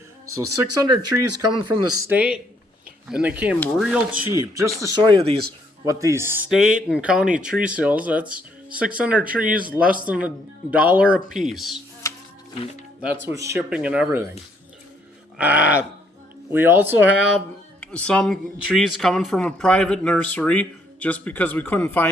So 600 trees coming from the state, and they came real cheap. Just to show you what these state and county tree sales, that's 600 trees, less than $1 a piece. And that's with shipping and everything. We also have some trees coming from a private nursery, just because we couldn't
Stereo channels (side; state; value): both; normal; correlation 0.69